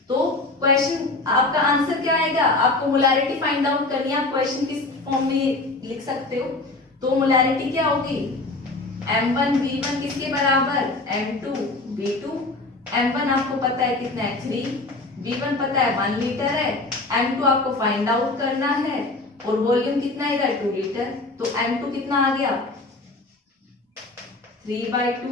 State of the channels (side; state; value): right; quieter; 3.1 dB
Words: तो क्वेश्चन आपका आंसर क्या आएगा? आपको मोलैरिटी फाइंड आउट करनी है, आप क्वेश्चन किस फॉर्म में लिख सकते हो। तो मोलैरिटी क्या होगी? M1V1 किसके बराबर? M2V2। M1 आपको पता है कितना है? 3, V1 पता है 1 लीटर है, M2 आपको फाइंड आउट करना है, और वॉल्यूम कितना आएगा? 2 लीटर। तो M2 कितना आ गया?